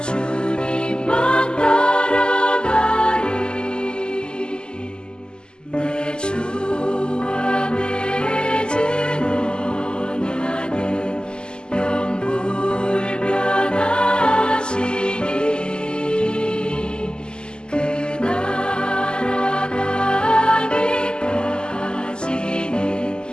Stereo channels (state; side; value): late; right; 0.047 ms